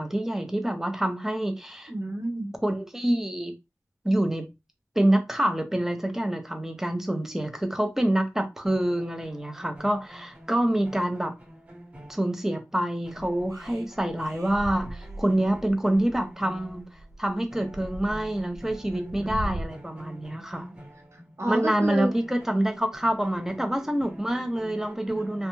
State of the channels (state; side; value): normal; both; correlation 0.97